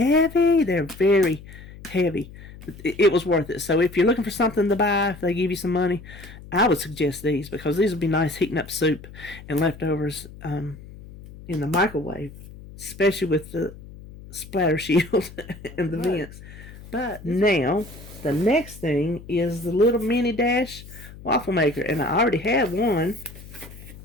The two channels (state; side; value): noise; left; hum, 17 dB below the sound